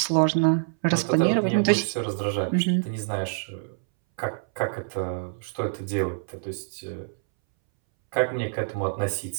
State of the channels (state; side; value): silent; left; 61 dB below the other